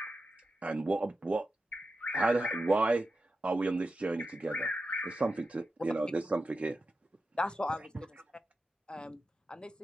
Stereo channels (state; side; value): normal; both; correlation 0.91